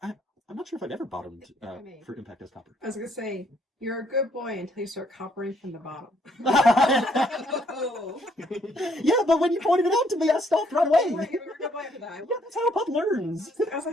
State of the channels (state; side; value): normal; both; correlation 0.68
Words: not sure if I've ever bottomed for impact as Copper. I was going to say, you're a good boy until you start coppering from the bottom. Yeah, but when you pointed it out to me, I stopped right away. You're a good boy after that. Yeah, that's how a pup learns. I was